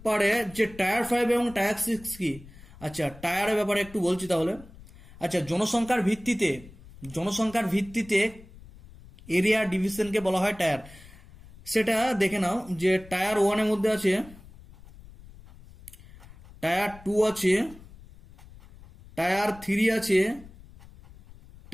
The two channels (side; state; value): left; noise; rumble, 20 dB below the sound